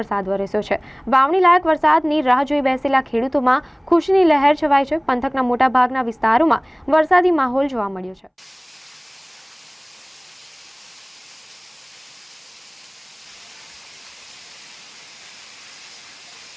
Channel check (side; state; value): both; identical; correlation 1.00